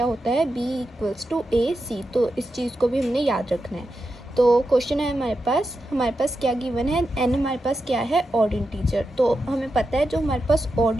होता है b इक्वल्स टू ए सी। तो इस चीज़ को भी हमने याद रखना है। तो क्वेश्चन है हमारे पास क्या गिवन है, n हमारे पास क्या है ऑड इंटीजर। तो हमें पता है जो हमारे पास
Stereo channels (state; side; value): normal; both; correlation 0.88